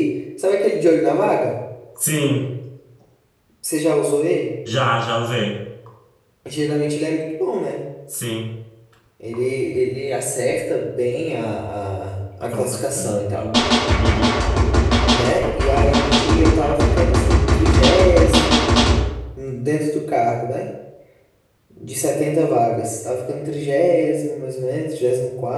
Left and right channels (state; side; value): identical; both; correlation 1.00